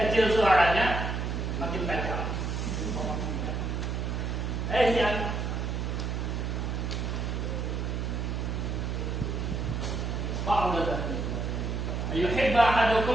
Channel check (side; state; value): right; noise; hum, 1 dB below the sound